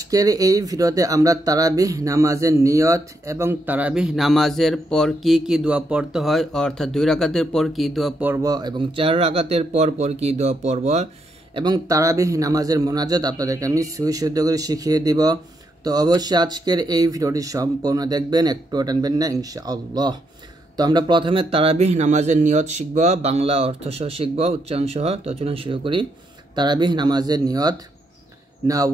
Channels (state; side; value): normal; both; correlation 0.79